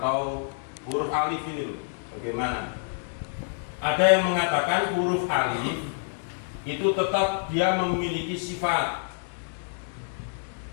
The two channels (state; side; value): silent; right; digital silence